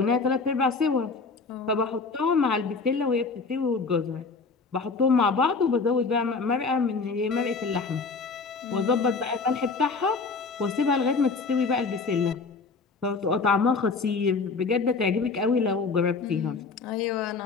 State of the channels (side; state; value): right; quieter; 4.4 dB